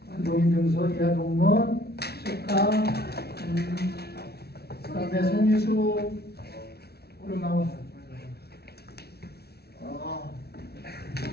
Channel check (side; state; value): right; late; 0.46 ms